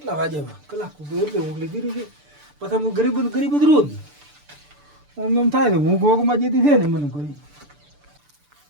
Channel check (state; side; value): late; left; 6.8 ms